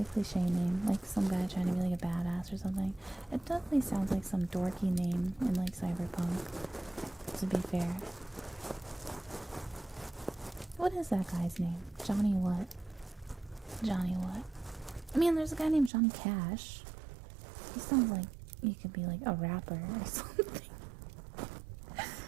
cliche name, like some guy trying to be like a badass or something. It definitely sounds like some dorky name in like Cyberpunk, to be fair. What is that guy's name? Johnny what? Johnny what? I mean, there's a guy named Johnny Cash. He sounds like he could be like a rapper or something.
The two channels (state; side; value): drops out; left; at 15.9 s